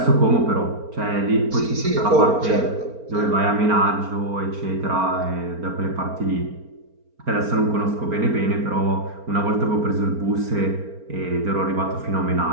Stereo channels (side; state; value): left; late; 4.4 ms